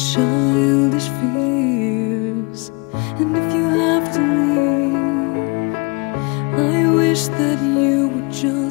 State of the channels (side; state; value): right; quieter; 29.9 dB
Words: fears. And if you have to leave, I wish that you would